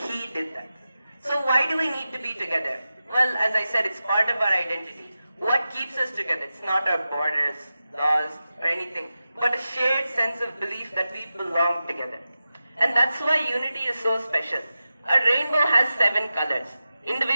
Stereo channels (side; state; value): both; inverted; correlation -0.93